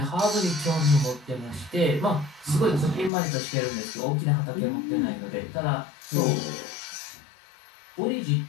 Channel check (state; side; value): drops out; right; at 3.1 s